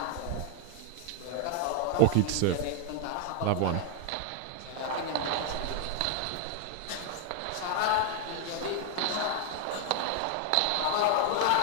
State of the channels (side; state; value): both; different; correlation 0.00